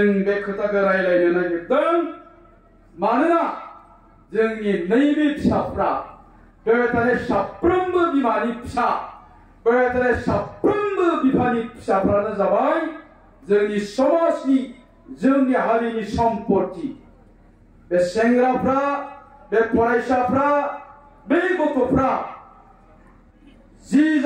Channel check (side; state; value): both; identical; correlation 1.00